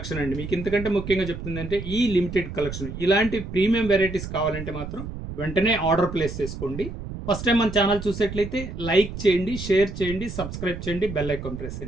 అండి. మీకు ఇంతకంటే ముఖ్యంగా చెప్తుందంటే ఈ లిమిటెడ్ కలెక్షన్. ఇలాంటి ప్రీమియం వెరైటీస్ కావాలంటే మాత్రం వెంటనే ఆర్డర్ ప్లేస్ చేసుకోండి. ఫస్ట్ టైం మన ఛానల్ చూసేట్లయితే లైక్ చేయండి, షేర్ చేయండి, సబ్స్క్రైబ్ చేయండి, బెల్ ఐకాన్ ప్రెస్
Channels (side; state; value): right; noise; rumble, 8 dB below the sound